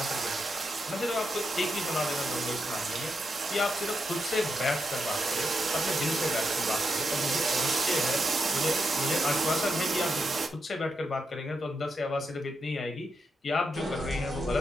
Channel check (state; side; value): normal; both; correlation 0.84